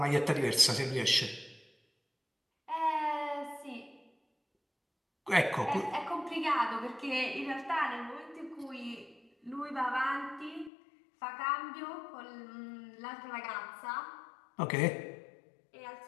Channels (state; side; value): drops out; right; at 10.7 s